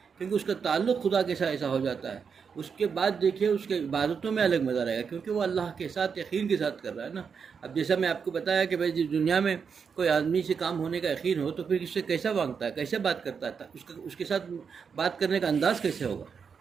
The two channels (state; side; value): quieter; left; 6.2 dB